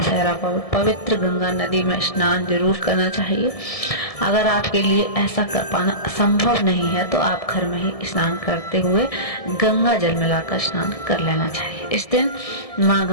पर पवित्र गंगा नदी में स्नान जरूर करना चाहिए। अगर आपके लिए ऐसा कर पाना संभव नहीं है तो आप घर में ही स्नान करते हुए गंगा जल मिलाकर स्नान कर लेना चाहिए। इस दिन माँ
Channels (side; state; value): right; late; 1.7 ms